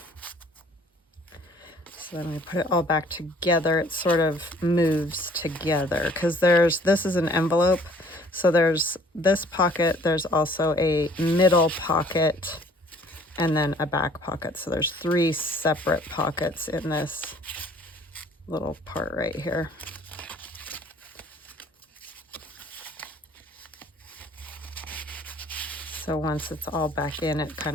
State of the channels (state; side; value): normal; both; correlation 0.56